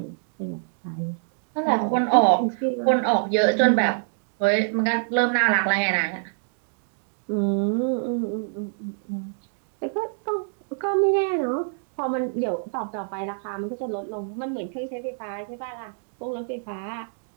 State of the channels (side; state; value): left; silent; digital silence